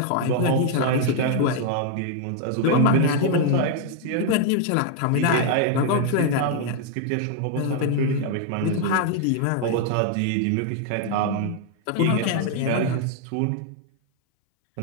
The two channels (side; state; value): both; different; correlation 0.00